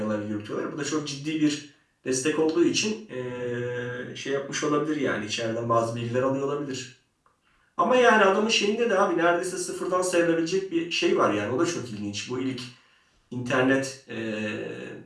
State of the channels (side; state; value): both; identical; correlation 1.00